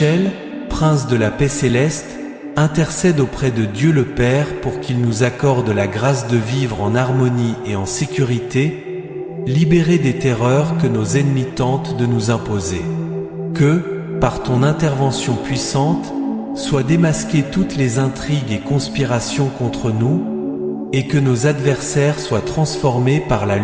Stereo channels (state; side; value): identical; both; correlation 1.00